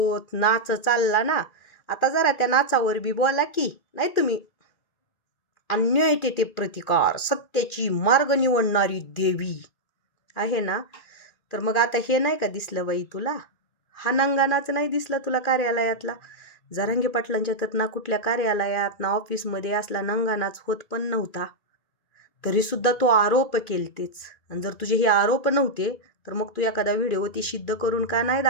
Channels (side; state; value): right; late; 2.3 ms